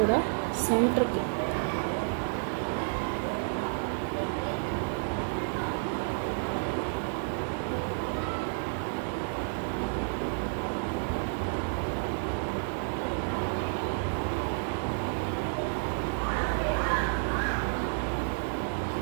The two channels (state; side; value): silent; left; digital silence